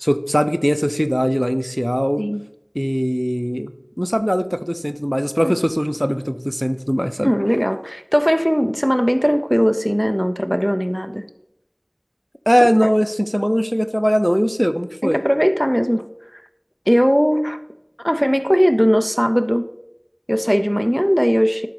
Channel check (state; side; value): identical; both; correlation 1.00